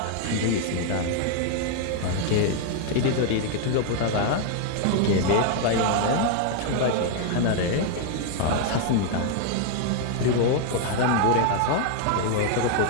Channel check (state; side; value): different; both; correlation 0.00